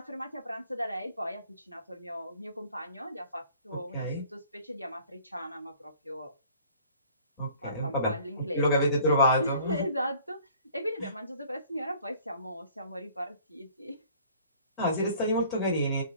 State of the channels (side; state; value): both; inverted; correlation -0.53